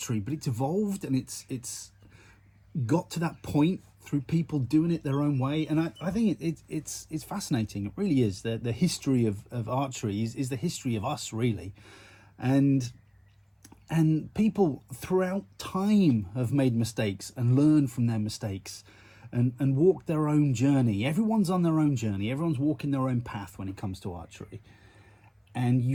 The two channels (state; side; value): identical; both; correlation 1.00